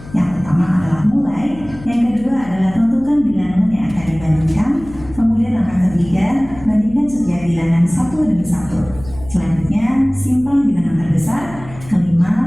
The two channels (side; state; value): left; noise; hum, 17 dB below the sound